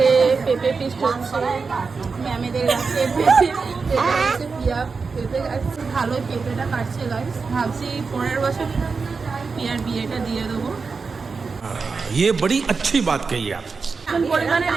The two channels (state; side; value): quieter; left; 4.8 dB